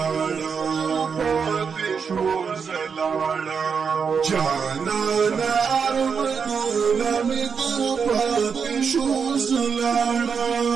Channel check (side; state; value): left; quieter; 6.1 dB